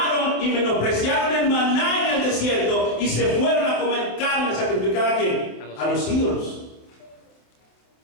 y menospreciaron el maná en el desierto y se fueron a comer carne sacrificada ¿a quién? A los ídolos.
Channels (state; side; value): late; right; 28 ms